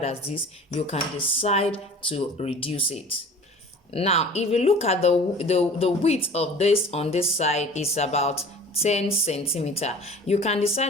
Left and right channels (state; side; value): normal; both; correlation 0.43